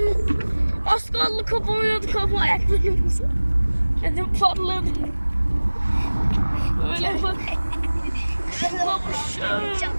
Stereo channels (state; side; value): inverted; both; correlation -1.00